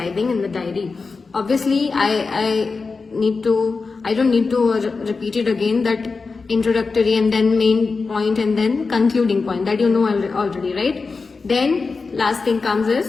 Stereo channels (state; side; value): quieter; right; 4.4 dB